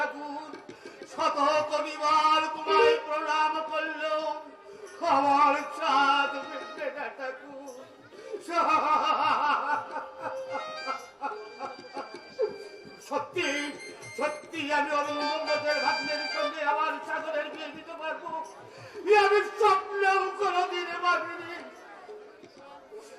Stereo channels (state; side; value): identical; both; correlation 1.00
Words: শত কবিবার তোমায় প্রণাম করলেও আমার চাঁদ মিটবে না ঠাকুর। সত্যি সত্যি আমি অরুণের ভাগ্নের সঙ্গে আমার সাগরের বিয়ে দিতে পারবো, আমি স্বপ্নেও কোনোদিন ভাবিনি।